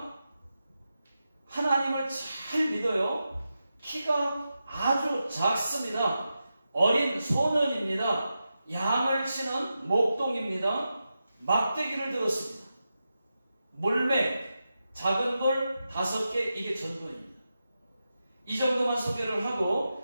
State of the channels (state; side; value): inverted; both; correlation -0.90